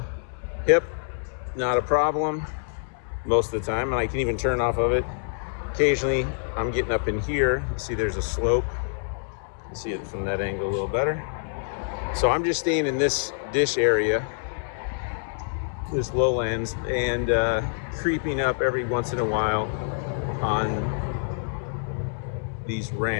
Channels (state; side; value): silent; right; 61 dB below the other